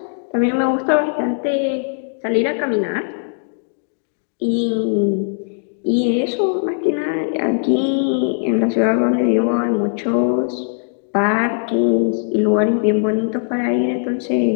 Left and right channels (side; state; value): right; silent; digital silence